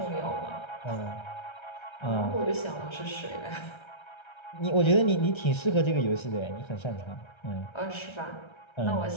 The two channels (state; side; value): late; right; 1.3 ms